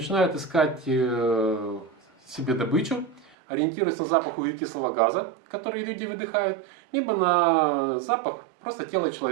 искать себе добычу, ориентируются на запах углекислого газа, который люди выдыхают, либо на запах просто тела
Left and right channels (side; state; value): left; drops out; at 3.4 s